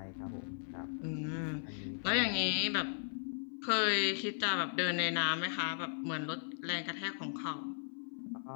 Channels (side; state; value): right; silent; 53 dB below the other